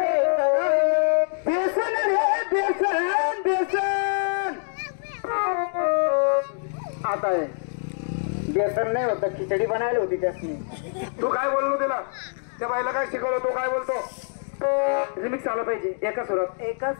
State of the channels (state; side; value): silent; right; digital silence